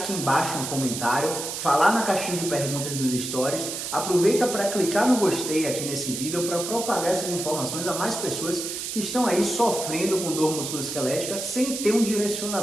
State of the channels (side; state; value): right; noise; hiss, 5 dB below the sound